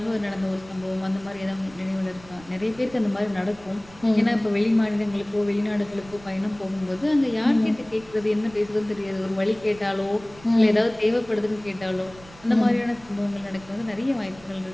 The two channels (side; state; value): right; noise; rumble, 22 dB below the sound